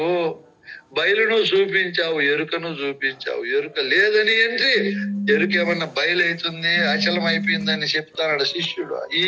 బయలును చూపించావు, ఎరుకను చూపించావు. ఎరుక లేదని ఏంటి? ఎరుక ఏమన్నా బయలైతుంది అచలం అయిపోయిందని చెప్తాడు శిష్యుడు. ఈ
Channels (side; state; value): both; identical; correlation 1.00